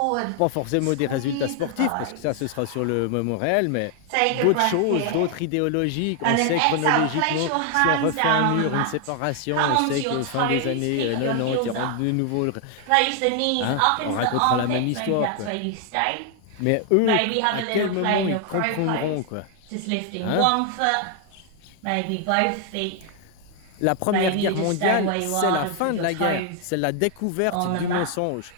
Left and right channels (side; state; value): both; different; correlation 0.00